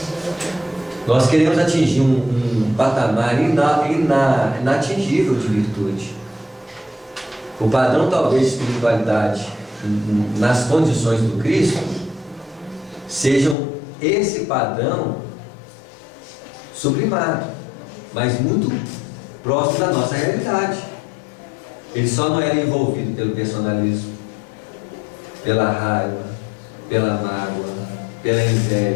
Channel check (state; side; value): drops out; right; at 13.6 s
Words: Nós queremos atingir um patamar inatingível de virtude. O padrão talvez de espiritualidade nas condições do Cristo sejam esse padrão sublimado, mas muito próximo da nossa realidade. Ele só não era envolvido pelo personalismo, pela raiva, pela mágoa, pela